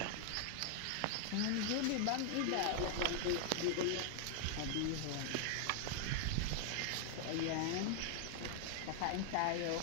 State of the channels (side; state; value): both; different; correlation 0.00